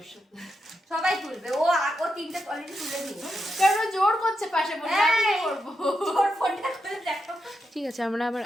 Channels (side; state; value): both; normal; correlation 0.85